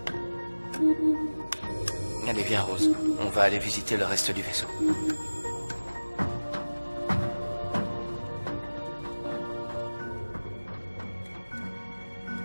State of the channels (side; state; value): both; inverted; correlation -1.00